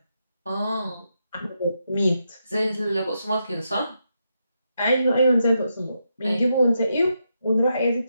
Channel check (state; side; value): inverted; both; correlation -0.83